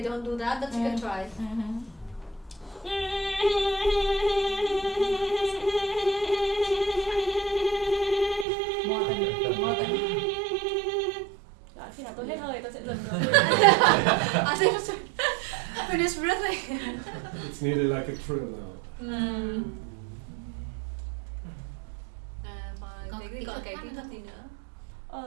don't do that, but you can try. Đó, khi nào tôi hết hơi tôi sẽ dừng rồi. I think finish breathing. It's nearly like a trill now. Và cái còn cái kỹ thuật gì nữa?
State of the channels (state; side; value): drops out; left; at 8.5 s